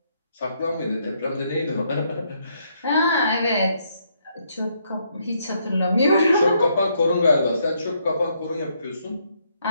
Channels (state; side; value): inverted; both; correlation -0.74